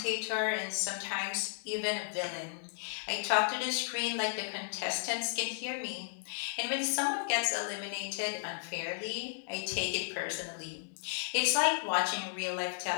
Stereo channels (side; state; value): right; silent; digital silence